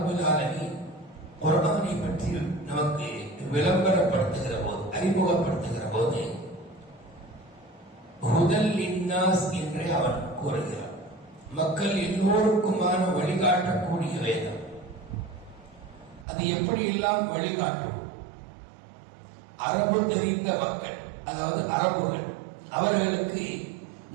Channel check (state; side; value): drops out; left; at 16.2 s